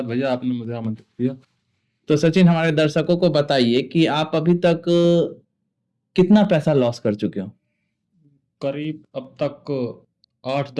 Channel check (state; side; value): identical; both; correlation 1.00